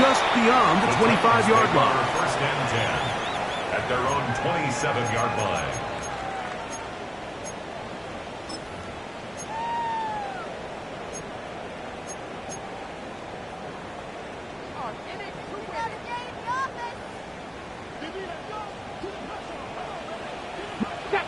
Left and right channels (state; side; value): identical; both; correlation 1.00